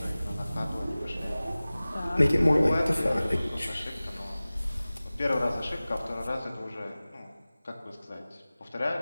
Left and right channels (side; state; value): both; inverted; correlation -0.98